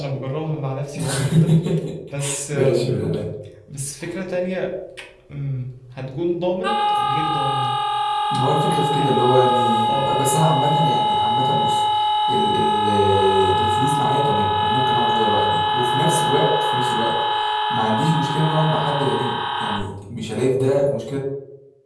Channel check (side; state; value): both; identical; correlation 1.00